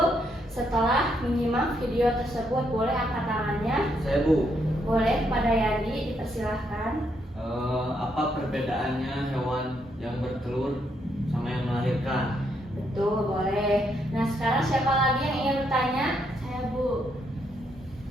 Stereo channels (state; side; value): normal; both; correlation 0.76